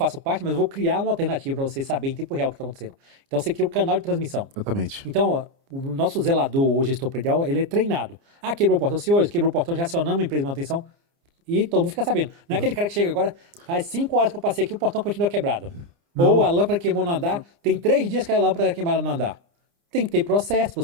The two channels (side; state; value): left; late; 29 ms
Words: parte, mas eu vou criar uma alternativa para você saber em tempo real o que está acontecendo. Então você cria o canal de transmissão. exatamente. Então, ó, o nosso zelador, o gestor predial, ele é treinado. Ah, quebrou o portão, senhores, quebrou o portão, já acionamos a empresa de manutenção e todo mundo fica sabendo. Não é aquele cara que chega agora, faz 5 horas que eu passei aqui, o portão continua quebrado. Ou a lâmpada queimou no andar, tem 3 dias que a lâmpada queimada no andar. Tem que ter processo,